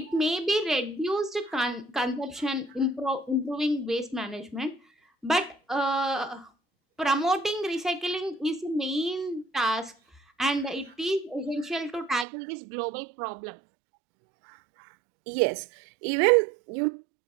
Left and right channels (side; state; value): left; drops out; at 12.2 s